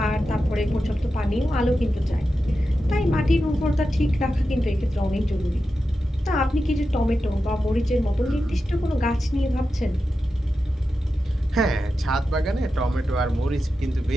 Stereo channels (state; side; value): normal; both; correlation 0.90